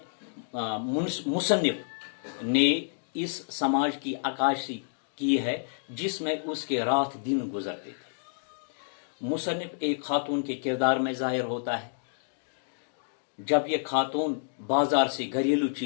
मुसन्निफ ने इस समाज की अक्कासी की है जिसमें उसके रात दिन गुजरते थे। मुसन्निफ एक खातून के किरदार में जाहिर होता है। जब ये खातून बाजार से घरेलू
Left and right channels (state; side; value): silent; right; digital silence